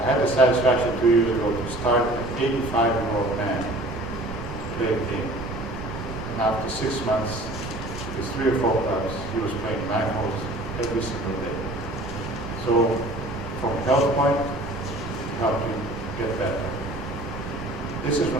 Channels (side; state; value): right; noise; rumble, 11 dB below the sound